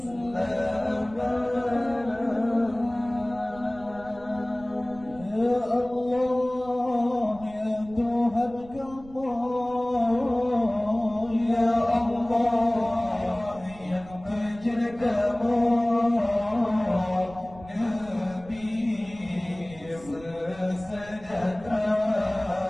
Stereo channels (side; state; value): right; noise; rumble, 20 dB below the sound